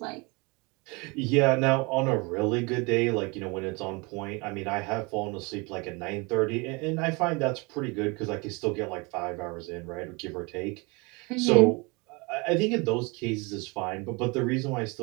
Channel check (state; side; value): quieter; left; 28.1 dB